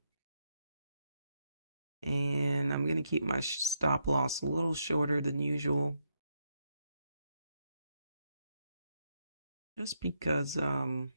And I'm going to keep my stop loss a little shorter than usual. Just because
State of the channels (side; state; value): both; inverted; correlation -0.81